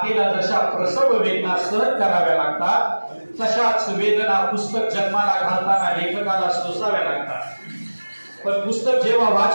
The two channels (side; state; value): both; inverted; correlation -1.00